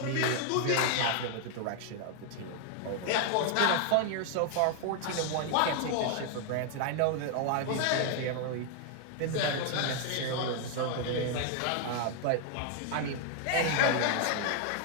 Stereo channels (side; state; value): both; different; correlation 0.00